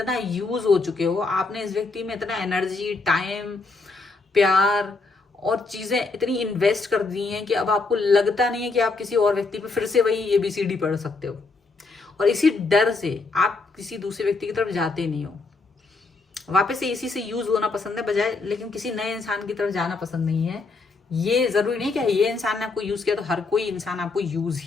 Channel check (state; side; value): quieter; right; 3.9 dB